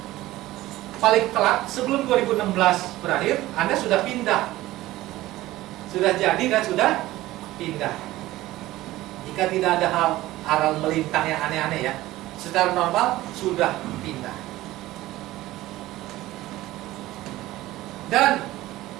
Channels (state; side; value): quieter; left; 16.7 dB